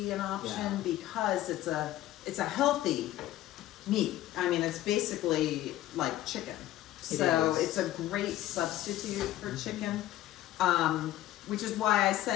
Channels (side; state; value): right; quieter; 14.3 dB